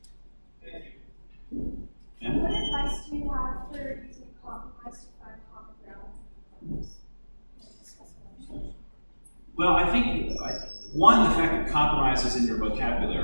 Yeah? What advice do you have for using compromise to find common ground? Well, I think, one, the fact that compromise is in your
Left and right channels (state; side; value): inverted; both; correlation -1.00